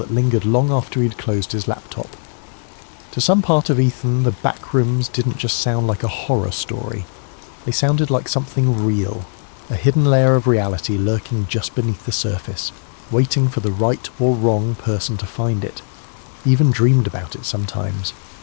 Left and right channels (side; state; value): right; silent; 57 dB below the other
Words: lingered long after he'd closed his laptop. To some part of Ethan, the Backrooms didn't just sound like a horror story. They sounded like something real, a hidden layer of reality lurking just beneath the surface, waiting for the right or wrong person to find it. He even dreamed about it sometimes.